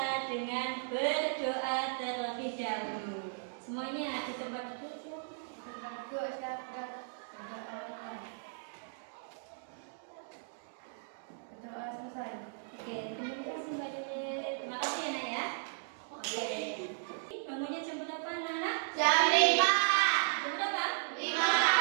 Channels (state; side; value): silent; left; digital silence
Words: dengan berdoa terlebih dahulu. Semuanya di tempat duduk. Berdoa selesai. Oke, terima kasih Mbak Dede. Terima kasih ya Nak ya. Oke. Bangunnya jam berapa anak-anak? Jam 5. Jam berapa? 5.